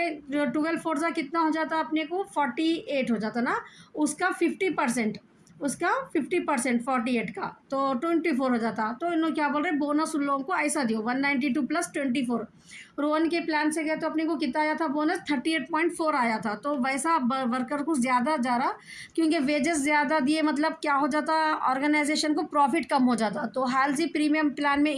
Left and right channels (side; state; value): both; identical; correlation 1.00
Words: 12 फोर सा कितना हो जाता अपने को, 48 हो जाता ना, उसका 50%, उसका 50% 48 का तो 24 हो जाता। तो इन लोग क्या बोल रहे हैं, बोनस उन लोगों को ऐसा दियो 192 प्लस 24। रोहन के प्लान से गए तो अपने को कितना आया था बोनस, 38.4 आया था। तो वैसा वर्कर को ज़्यादा जा रहा, क्योंकि वेजेस ज़्यादा दिए, मतलब क्या हो जाता, ऑर्गेनाइजेशन को प्रॉफिट कम हो जाता। तो हेल्जी प्रीमियम प्लान में